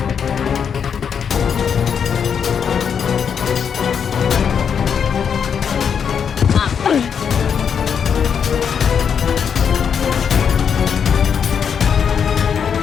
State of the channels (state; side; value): quieter; right; 7.2 dB